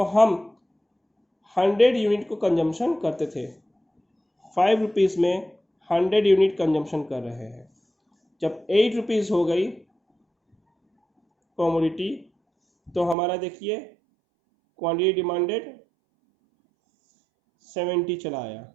हम 100 यूनिट को कंजम्पशन करते थे। 5 रुपीज़ में 100 यूनिट कंजम्पशन कर रहे हैं। जब 8 रुपीज़ हो गई कमोडिटी तो हमारा देखिए क्वांटिटी डिमांडेड 70 चला आया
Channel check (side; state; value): left; drops out; at 13.2 s